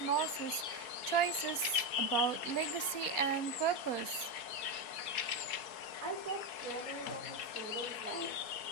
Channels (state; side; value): late; right; 4.3 ms